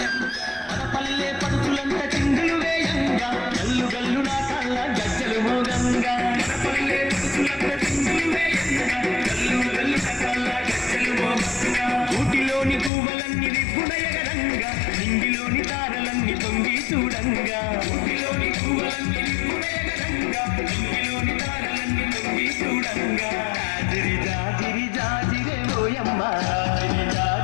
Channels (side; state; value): right; drops out; at 12.9 s